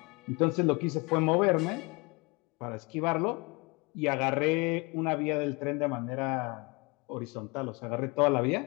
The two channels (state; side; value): quieter; right; 27.8 dB